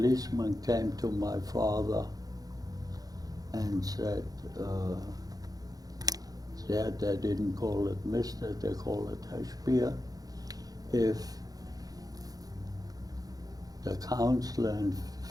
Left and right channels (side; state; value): left; late; 0.18 ms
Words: came to my father and said, they didn't call it Mr., they call it Spier. If the counselor in